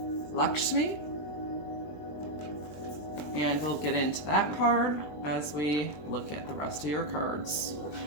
Lakshmi. And we'll get into that card as we look at the rest of your cards.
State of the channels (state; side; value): late; right; 20 ms